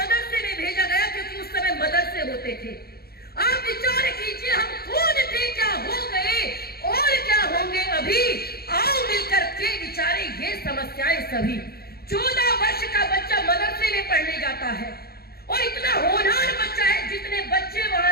में भेजा गया, क्योंकि उस समय मदरसे होते थे। आप विचार कीजिए, हम कौन थे, क्या हो गए और क्या होंगे अभी। आओ मिलकर के विचारे ये समस्याएं सभी। 14 वर्ष का बच्चा मदरसे में पढ़ने जाता है और इतना होनहार बच्चा है, जितने बच्चे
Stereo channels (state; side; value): late; right; 0.45 ms